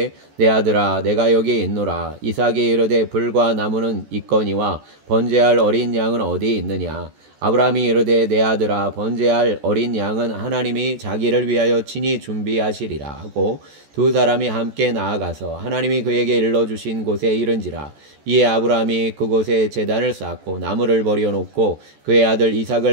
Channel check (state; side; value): late; left; 14 ms